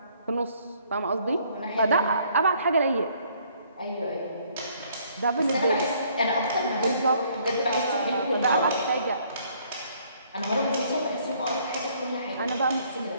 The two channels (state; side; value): inverted; both; correlation -0.64